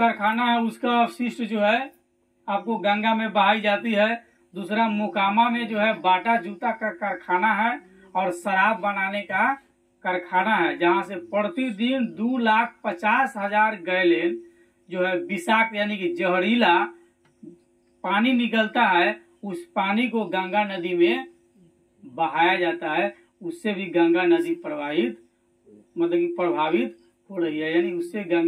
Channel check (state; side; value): identical; both; correlation 1.00